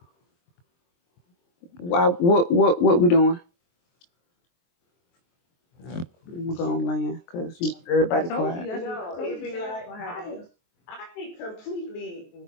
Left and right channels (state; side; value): late; right; 23 ms